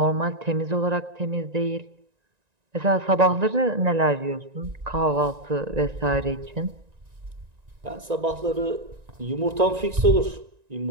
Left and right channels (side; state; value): left; late; 1.9 ms